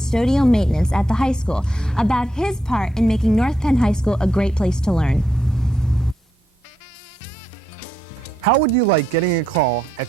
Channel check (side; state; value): both; normal; correlation 0.80